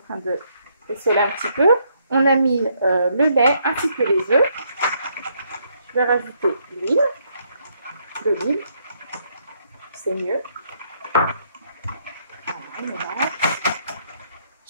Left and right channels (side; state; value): both; inverted; correlation -0.72